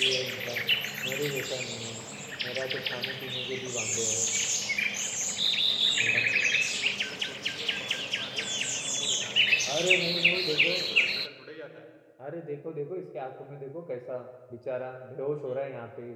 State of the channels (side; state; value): both; identical; correlation 1.00